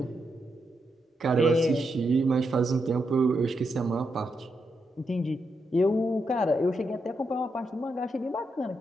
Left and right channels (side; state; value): both; normal; correlation 0.83